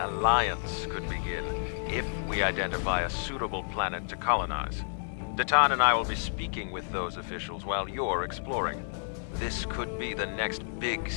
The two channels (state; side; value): silent; right; digital silence